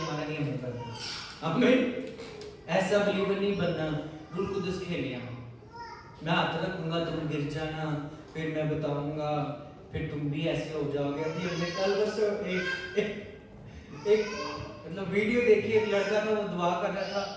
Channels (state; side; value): identical; both; correlation 1.00